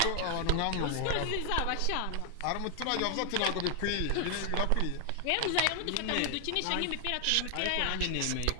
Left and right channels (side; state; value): both; different; correlation 0.00